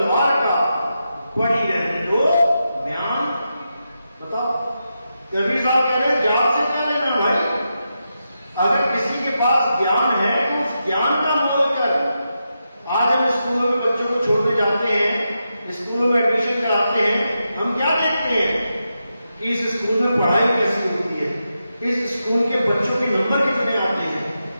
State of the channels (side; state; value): both; inverted; correlation -0.87